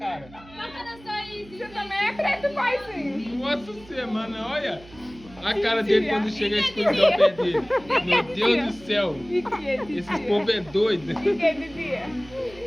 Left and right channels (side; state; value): right; noise; hum, 22 dB below the sound